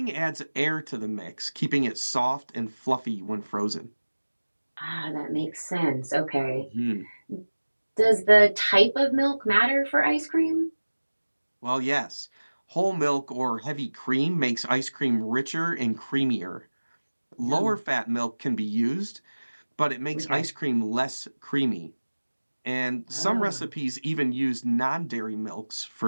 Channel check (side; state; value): both; inverted; correlation -1.00